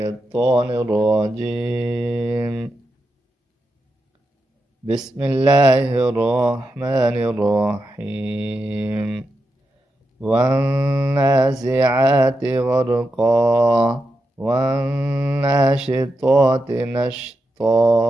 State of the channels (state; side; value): normal; both; correlation 0.87